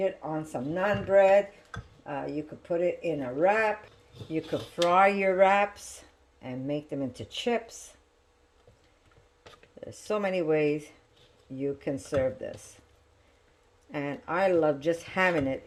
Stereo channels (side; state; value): both; identical; correlation 1.00